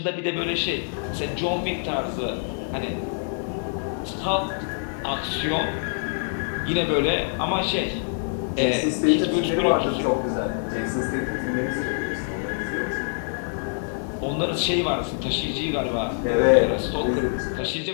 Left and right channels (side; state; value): right; silent; digital silence